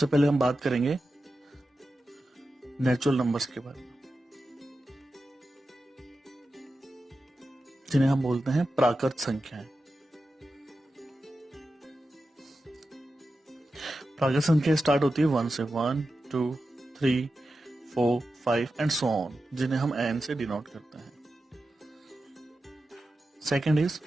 पहले हम बात करेंगे नेचुरल नंबर्स के बारे में, जिन्हें हम बोलते हैं प्राकृत संख्याएं। प्राकृत संख्या स्टार्ट होती है 1 से, 1 2 3 4 5 एंड सो ऑन, जिन्हें हम एन से डिनोट करते हैं। सेकेंड इज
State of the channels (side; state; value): both; normal; correlation 0.92